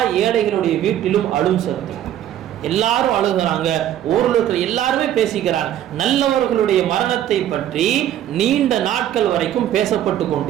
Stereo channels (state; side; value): quieter; left; 11.5 dB